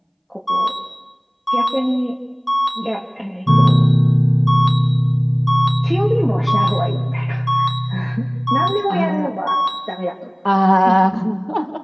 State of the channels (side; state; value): both; identical; correlation 1.00